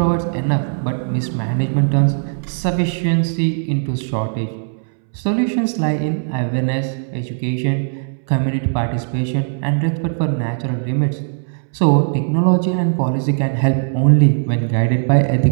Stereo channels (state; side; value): silent; left; 67 dB below the other